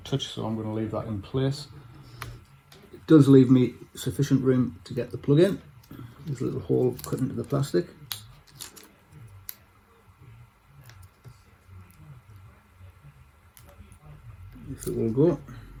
touch, so I'm going to leave that in place. It does leave me sufficient room to get the plug in. There's a little hole cut into the plastic. If it will go.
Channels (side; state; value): both; identical; correlation 1.00